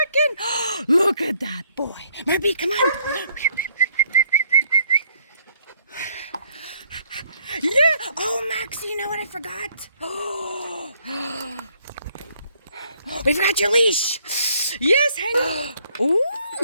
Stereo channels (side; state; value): both; inverted; correlation -0.66